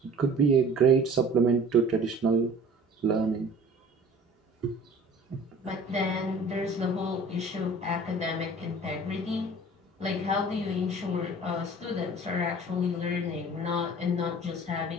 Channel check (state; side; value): normal; both; correlation 0.46